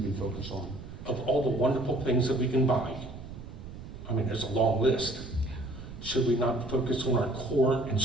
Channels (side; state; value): right; noise; rumble, 13 dB below the sound